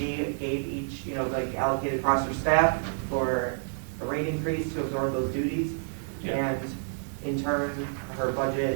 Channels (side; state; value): left; silent; 59 dB below the other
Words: gave each, like allocated across her staff for a rate increase to absorb those duties. Yeah. And in turn, her